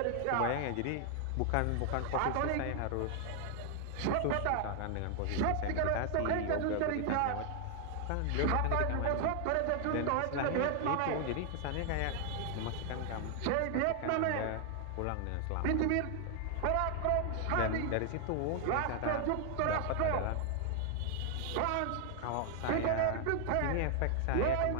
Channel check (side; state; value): both; different; correlation 0.00